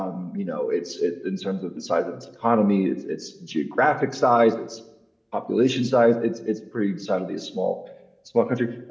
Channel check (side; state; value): both; identical; correlation 1.00